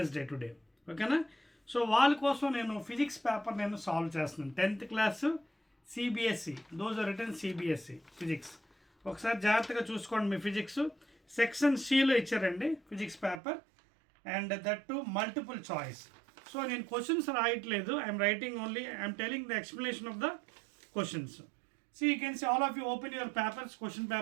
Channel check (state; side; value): drops out; left; at 13.4 s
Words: today. ఓకేనా? సో వాళ్ళ కోసం నేను ఫిజిక్స్ పేపర్ నేను సాల్వ్ చేస్తున్నాను. 10th class CBSE, those are written CBSE physics. ఒకసారి జాగ్రత్తగా చూసుకోండి. మీ ఫిజిక్స్ సెక్షన్ సిలో ఇచ్చారండి physics paper, and that to multiple choice. So నేను క్వశ్చన్స్ రాయట్లేదు, I'm writing only, I'm telling the explanation of the questions. So you can see all of you open your papers, question